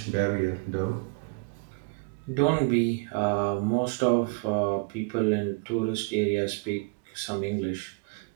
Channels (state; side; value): quieter; left; 30.5 dB